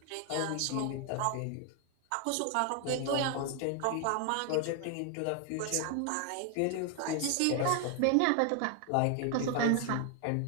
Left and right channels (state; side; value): different; both; correlation 0.00